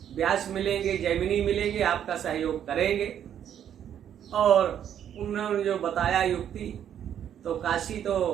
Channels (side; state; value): left; quieter; 9.6 dB